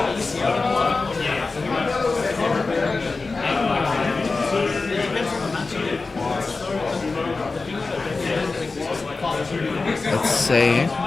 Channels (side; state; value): right; quieter; 3.9 dB